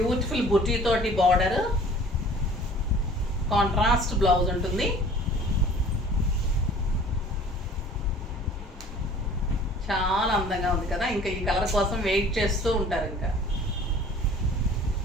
బుటీ తోటి బార్డర్, కాంట్రాస్ట్ బ్లౌజ్ ఉంటుంది. చాలా అందంగా ఉంది కదా. ఇంకా ఈ కలర్ కోసం వెయిట్ చేస్తూ ఉంటారు ఇంకా.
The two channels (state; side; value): normal; both; correlation 0.49